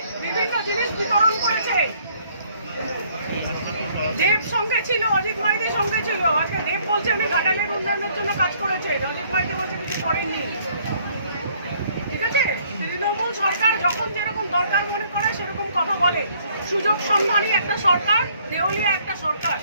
বিভিন্ন জিনিস বিতরণ করেছে। দেব সঙ্গে ছিল, অজিত মাইতির সঙ্গে ছিল। আজকে দেব বলছে উনি ঘাটালের উন্নয়নের জন্য কাজ করেছে, অজিত মাইতি বলছে কিছু করেননি। ঠিক আছে? তৃণমূল সরকার যখন যেরকম দরকার মনে করে সেরকম কথা বলে। সুযোগ সন্ধানী একটা সরকার, দেউলিয়া একটা সরকার।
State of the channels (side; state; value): both; inverted; correlation -0.63